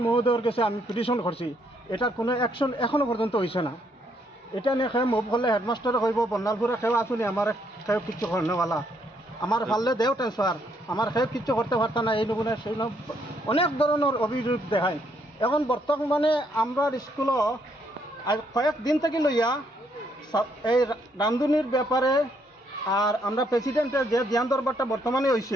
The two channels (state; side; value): normal; both; correlation 0.72